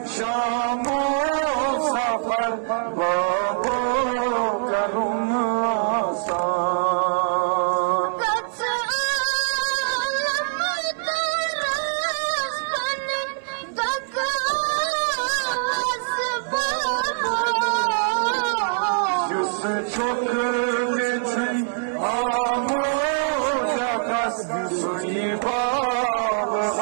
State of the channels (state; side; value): silent; left; 62 dB below the other